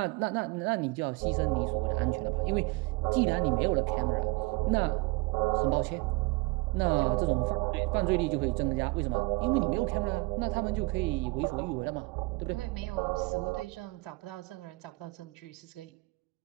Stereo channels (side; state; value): left; quieter; 26.1 dB